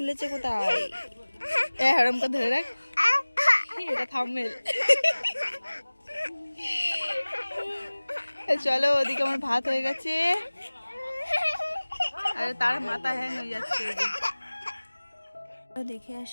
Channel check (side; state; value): both; inverted; correlation -1.00